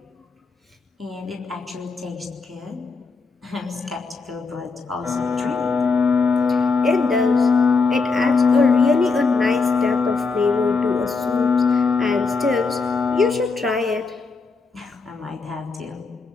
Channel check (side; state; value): right; quieter; 4.4 dB